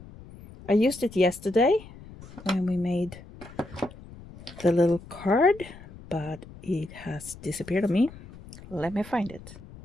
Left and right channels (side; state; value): left; noise; rumble, 18 dB below the sound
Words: I used it yesterday when we made the little card, but it has disappeared on me. Let me find it.